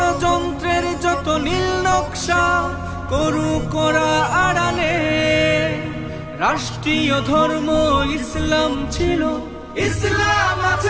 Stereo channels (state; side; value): identical; both; correlation 1.00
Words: যত নীল নকশা করু করা আড়ালে, রাষ্ট্রীয় ধর্ম ইসলাম ছিল, ইসলাম